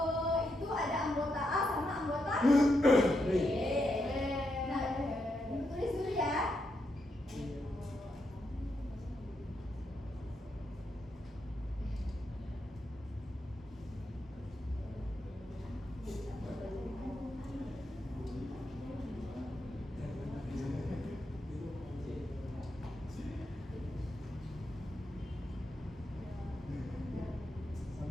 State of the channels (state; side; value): normal; both; correlation 0.82